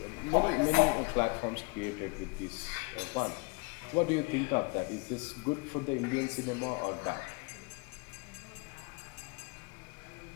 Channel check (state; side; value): quieter; right; 28.1 dB